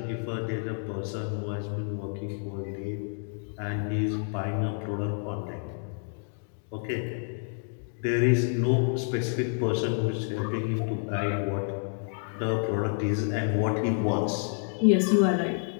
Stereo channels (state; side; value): silent; right; 59 dB below the other